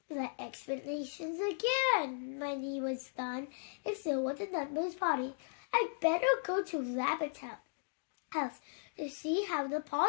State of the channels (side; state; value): right; silent; digital silence